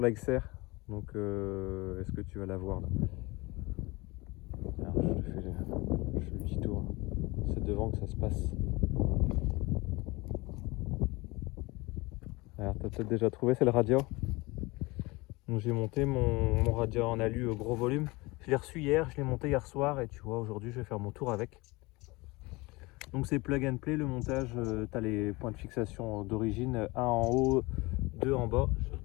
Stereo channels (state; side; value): quieter; right; 23.4 dB